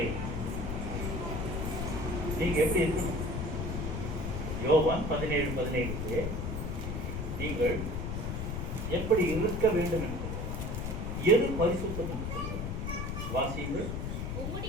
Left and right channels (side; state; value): left; noise; rumble, 3 dB below the sound